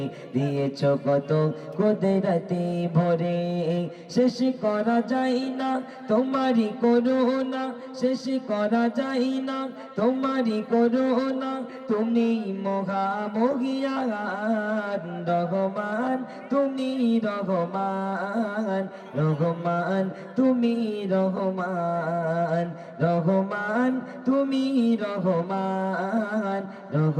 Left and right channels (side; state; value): both; identical; correlation 1.00